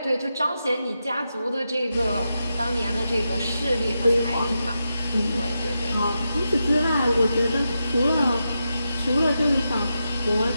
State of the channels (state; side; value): inverted; both; correlation -0.87